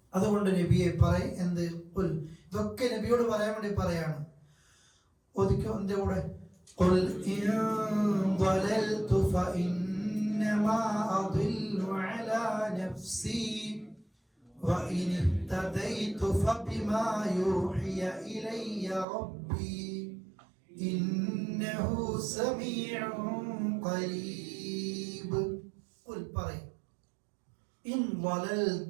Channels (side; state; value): left; drops out; at 19.1 s